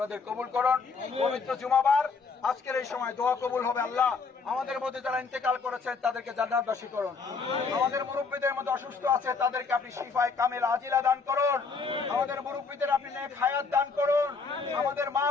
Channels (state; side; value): quieter; right; 4.8 dB